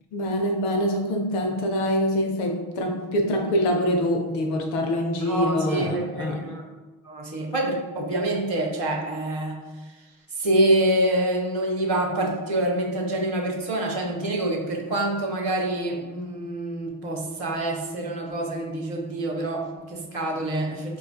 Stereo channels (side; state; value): right; late; 6.3 ms